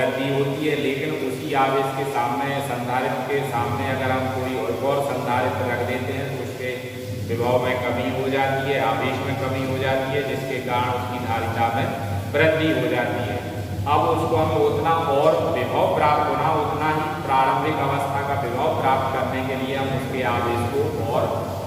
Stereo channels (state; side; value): identical; both; correlation 1.00